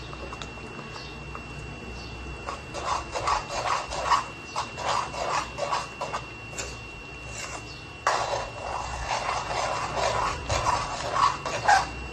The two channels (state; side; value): identical; both; correlation 1.00